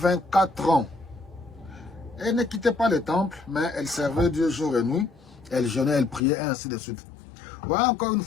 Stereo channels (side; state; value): right; drops out; at 6.2 s